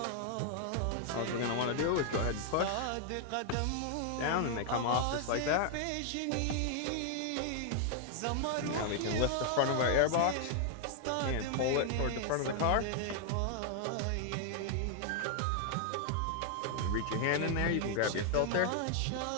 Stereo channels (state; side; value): different; both; correlation 0.00